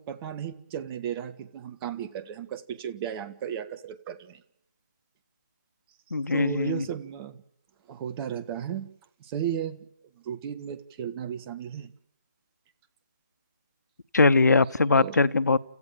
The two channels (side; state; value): both; inverted; correlation -0.62